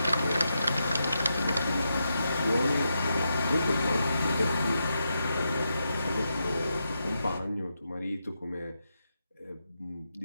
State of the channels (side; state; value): both; inverted; correlation -0.85